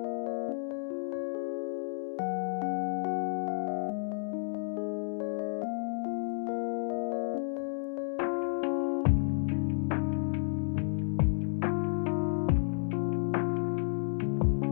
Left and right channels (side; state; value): right; silent; digital silence